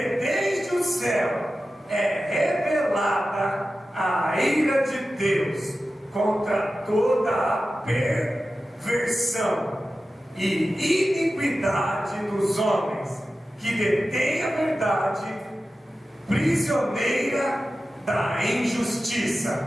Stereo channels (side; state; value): both; normal; correlation 0.93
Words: o céu é revelada a ira de Deus contra toda a perversão e iniquidade dos homens que detêm a verdade, prisioneira da